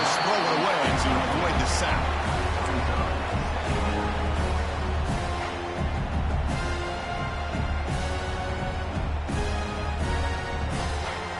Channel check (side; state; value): both; identical; correlation 1.00